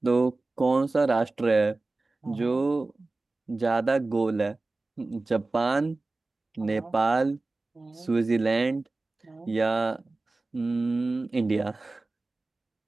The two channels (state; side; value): quieter; left; 3.3 dB